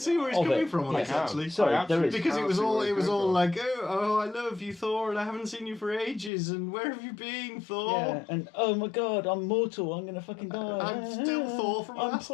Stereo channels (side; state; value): right; drops out; at 6.3 s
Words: where he's coming from on this, actually. Sorry, there is. Because it was all like, oh, I love you, Thor, and I haven't seen you for ages, and where have you been, Thor? Yeah, and oh my God, I'm mortal. I'm gonna fucking die. I'm still Thor from